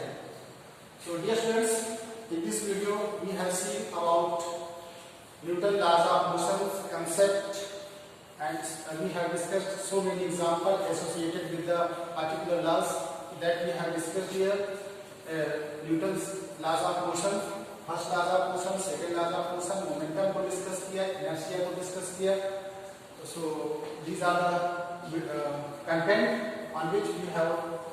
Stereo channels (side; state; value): both; identical; correlation 1.00